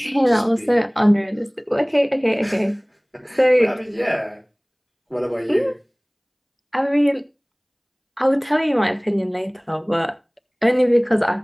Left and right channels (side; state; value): both; identical; correlation 1.00